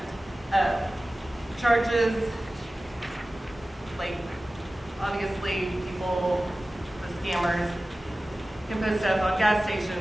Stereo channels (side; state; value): both; normal; correlation 0.96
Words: charges, like obviously people, the scammers, can put stuff on gas